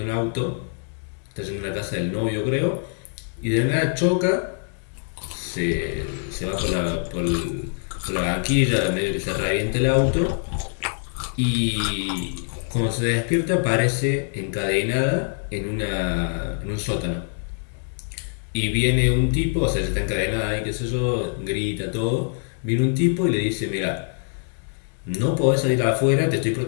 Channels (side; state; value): right; silent; 63 dB below the other